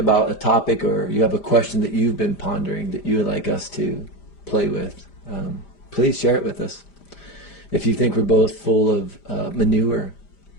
a topic, or you have a question that you've been pondering that you would like us to play with, please share it with us. If you think we're both full of manure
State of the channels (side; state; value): right; late; 5.0 ms